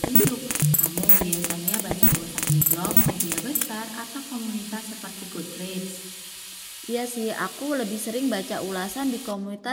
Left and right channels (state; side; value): identical; both; correlation 1.00